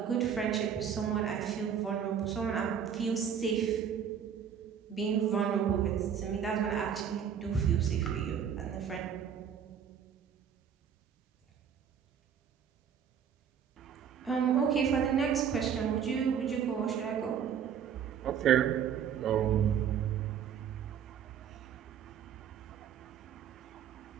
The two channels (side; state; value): left; quieter; 8.1 dB